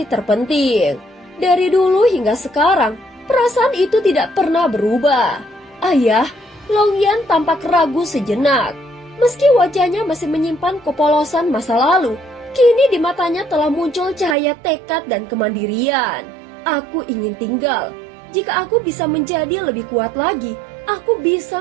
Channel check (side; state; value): left; drops out; at 14.4 s